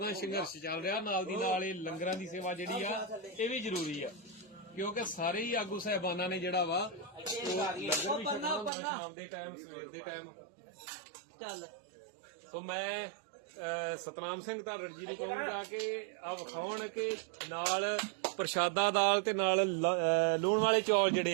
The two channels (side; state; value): left; drops out; at 8.7 s